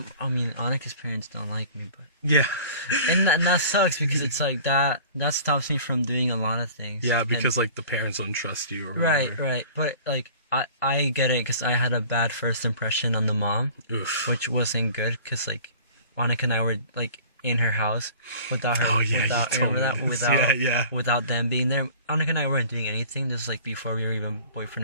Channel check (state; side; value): inverted; both; correlation -0.45